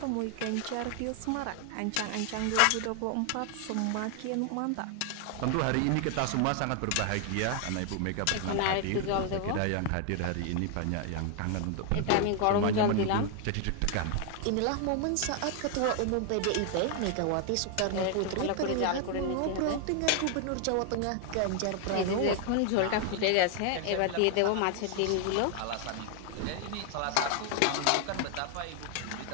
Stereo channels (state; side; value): different; both; correlation 0.00